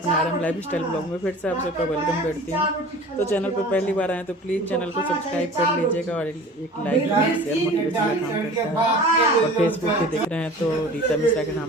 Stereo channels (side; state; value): both; normal; correlation 0.42